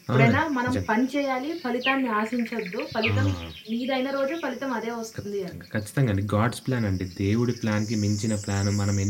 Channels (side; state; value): both; identical; correlation 1.00